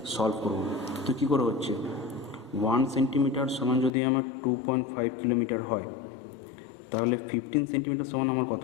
সলভ করবো। তো কী করে হচ্ছে, 1 সেন্টিমিটার সমান যদি আমার 2.5 কিলোমিটার হয়, তাহলে 15 সেন্টিমিটার সমান আমার কত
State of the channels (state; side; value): drops out; right; at 3.9 s